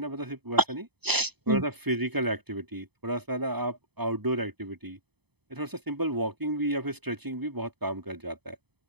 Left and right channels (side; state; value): left; late; 0.98 ms